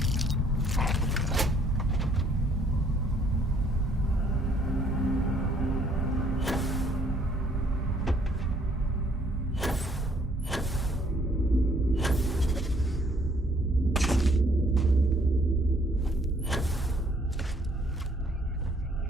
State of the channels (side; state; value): both; normal; correlation 0.64